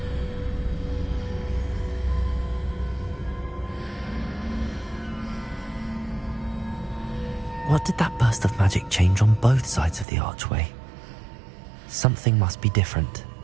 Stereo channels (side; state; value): left; drops out; at 10.1 s